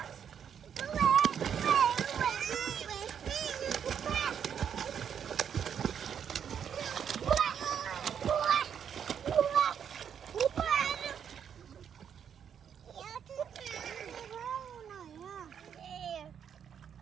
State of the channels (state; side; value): quieter; left; 8.1 dB